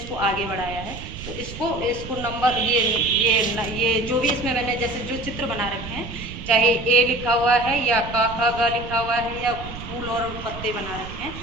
आगे बढ़ाया है। तो इसको नंबर ये जो भी इसमें मैंने जैसे जो चित्र बना रखे हैं, चाहे A लिखा हुआ है या क ख ग लिखा हुआ है या फूल और पत्ते बना रखे हैं,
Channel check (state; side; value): noise; right; rumble, 11 dB below the sound